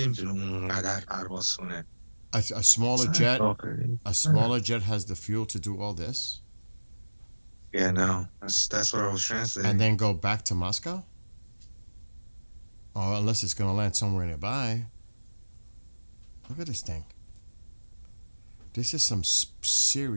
اونقدر پرواز کنه. A smaller jet has the fuel to do all this? Yeah, no. That's what I was translating. And then go back to Moscow? Or unless it's going to land somewhere nearby. Look at this thing. This is some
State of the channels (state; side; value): inverted; both; correlation -1.00